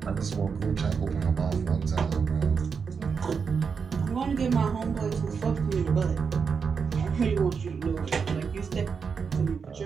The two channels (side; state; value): left; quieter; 5.9 dB